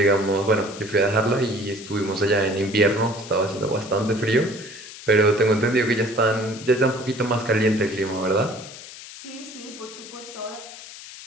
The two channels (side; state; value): left; noise; hiss, 15 dB below the sound